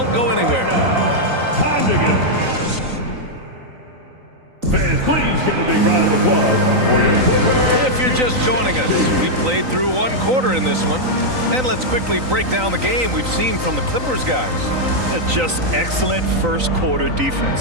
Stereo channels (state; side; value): late; left; 3.9 ms